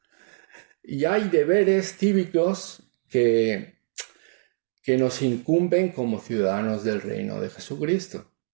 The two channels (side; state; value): left; silent; digital silence